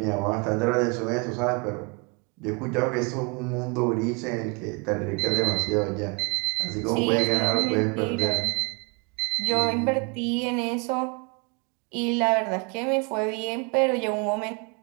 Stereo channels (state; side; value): quieter; left; 31.6 dB